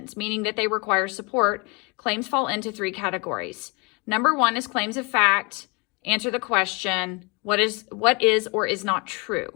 meaning that they require support. Claims fall into 3 categories. Number 1 is claims of fact. Answer the question, what is or is not true.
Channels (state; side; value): quieter; right; 29.7 dB